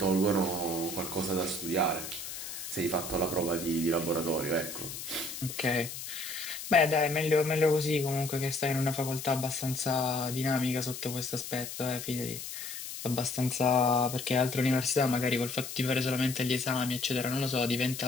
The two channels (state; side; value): noise; left; hiss, 8 dB below the sound